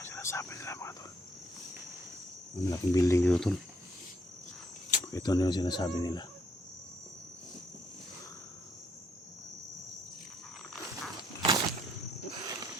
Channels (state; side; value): normal; both; correlation 0.70